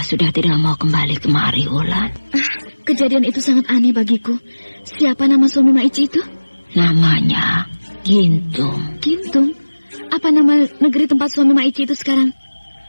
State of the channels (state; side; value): inverted; both; correlation -1.00